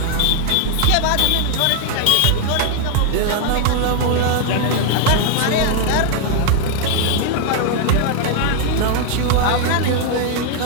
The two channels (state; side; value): different; both; correlation 0.00